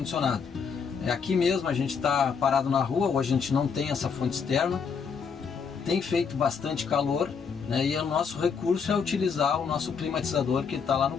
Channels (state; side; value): quieter; right; 6.0 dB